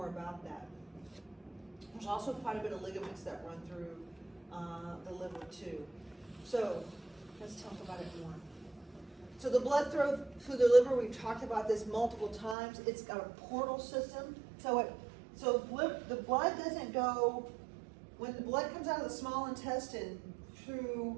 about that. There's also quite a bit of ligaments that run through the liver too. So let's talk about it more. So the blood flow through the liver, we've talked about this multiple times. It's got a portal system. So the blood doesn't go, when the blood comes out of the small intestine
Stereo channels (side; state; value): left; drops out; at 12.6 s